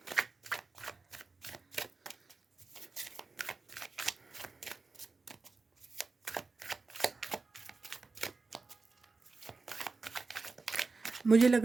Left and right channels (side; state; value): left; quieter; 4.0 dB